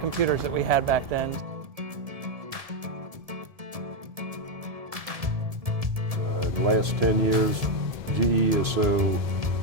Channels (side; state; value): left; late; 1.7 ms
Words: that we had back then. The last 10 years, GE is so